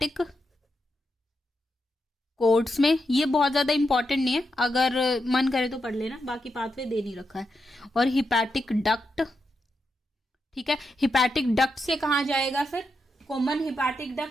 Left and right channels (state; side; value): normal; both; correlation 0.85